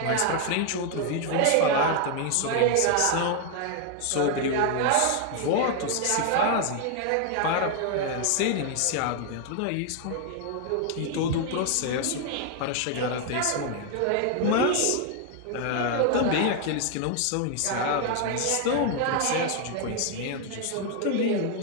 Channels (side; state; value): both; different; correlation 0.00